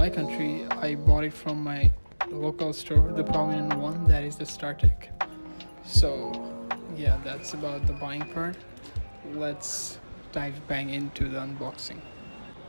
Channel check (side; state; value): both; inverted; correlation -1.00